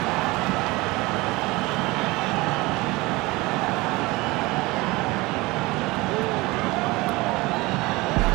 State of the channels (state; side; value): quieter; left; 22.1 dB